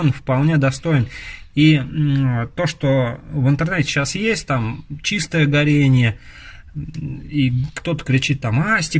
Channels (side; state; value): both; identical; correlation 1.00